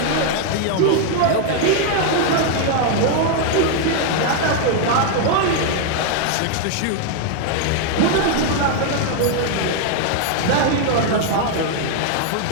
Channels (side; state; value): both; different; correlation 0.00